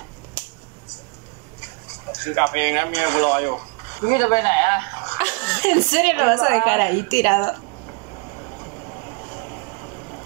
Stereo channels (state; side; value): quieter; left; 33.6 dB